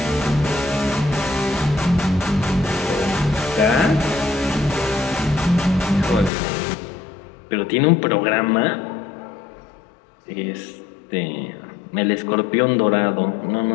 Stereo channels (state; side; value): drops out; right; at 6.3 s